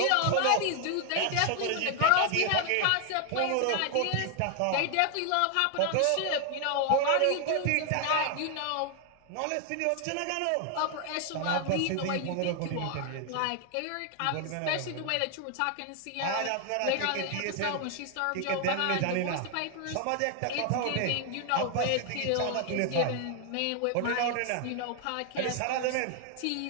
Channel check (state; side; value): different; both; correlation 0.00